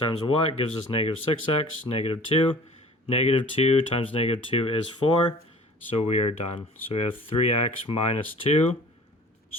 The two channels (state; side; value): normal; both; correlation 0.46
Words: what gives us negative 6x, negative 2. Negative 2 times negative 2 is 4. So we are done. So we have 3x minus 2